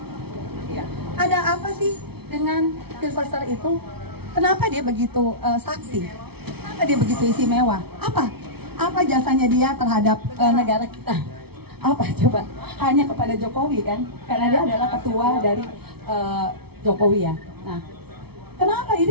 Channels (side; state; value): left; late; 0.96 ms